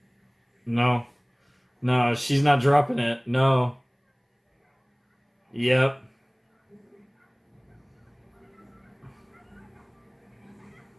No. No, she's not dropping it. No. Yep.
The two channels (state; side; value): identical; both; correlation 1.00